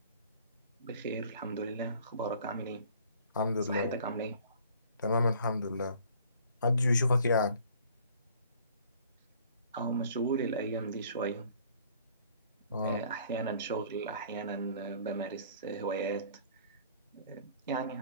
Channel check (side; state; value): both; inverted; correlation -0.54